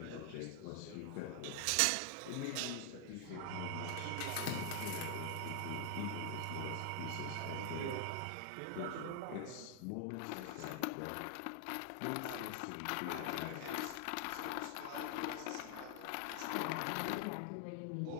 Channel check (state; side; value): different; both; correlation 0.00